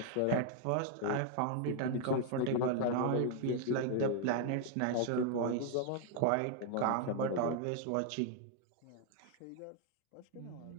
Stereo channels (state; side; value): different; both; correlation 0.00